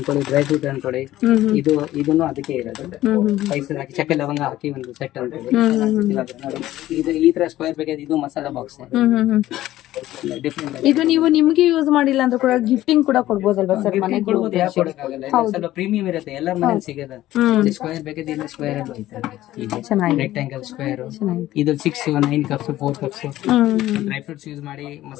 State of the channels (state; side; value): quieter; right; 14.7 dB